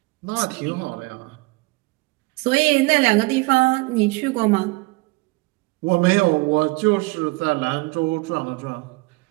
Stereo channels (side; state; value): left; quieter; 24.7 dB